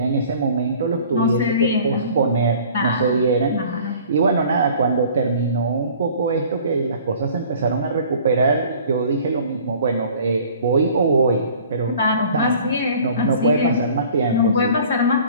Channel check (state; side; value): inverted; both; correlation -0.50